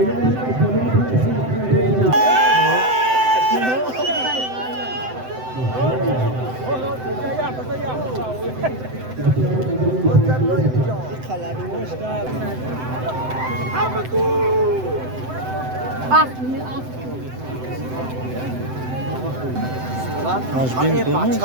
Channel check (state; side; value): late; left; 7.8 ms